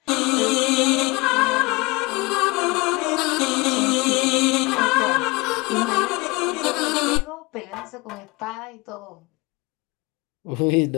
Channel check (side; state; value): right; quieter; 24.9 dB